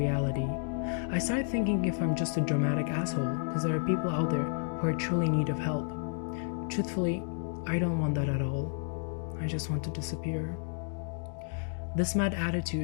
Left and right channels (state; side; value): silent; right; 57 dB below the other